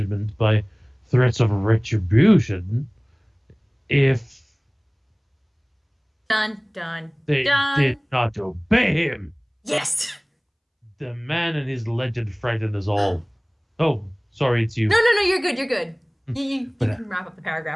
by threats of retribution if Dun, dun, They dun. did not obey him. Yes. The man and his legend frightened us all. Oh, sorry, it's you. No, you're good, you're good. You But, can wrap up the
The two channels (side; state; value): both; identical; correlation 1.00